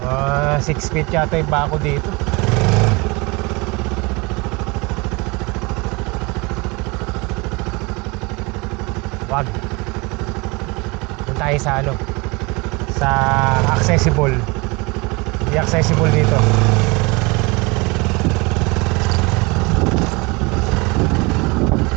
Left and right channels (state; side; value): quieter; left; 26.5 dB